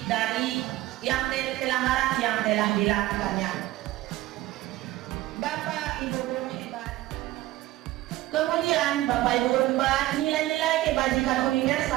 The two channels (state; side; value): quieter; left; 16.5 dB